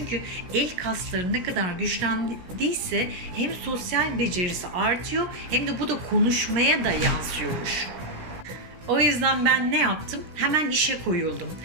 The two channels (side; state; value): left; late; 16 ms